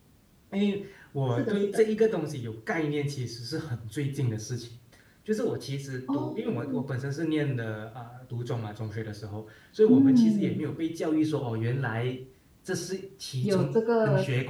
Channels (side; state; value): both; identical; correlation 1.00